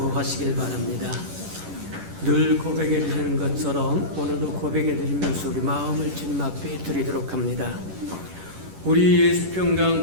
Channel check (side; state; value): left; late; 11 ms